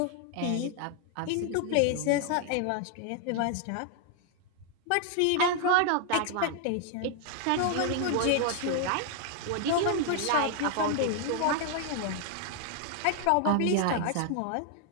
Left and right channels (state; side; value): different; both; correlation 0.00